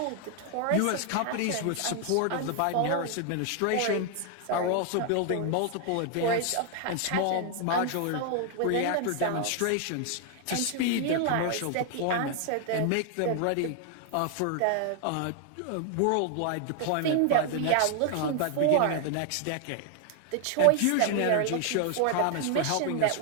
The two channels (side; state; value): both; different; correlation 0.00